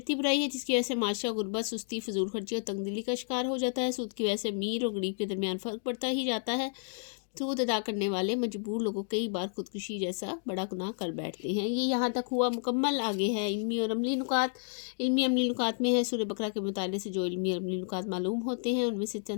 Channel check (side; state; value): right; silent; digital silence